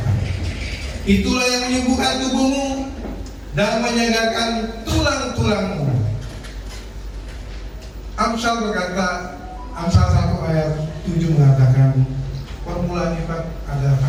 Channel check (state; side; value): identical; both; correlation 1.00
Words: Itulah yang menyembuhkan tubuhmu dan menyegarkan tulang-tulangmu. Amsal berkata, Amsal 1 ayat 7 mengatakan permulaan ibadah adalah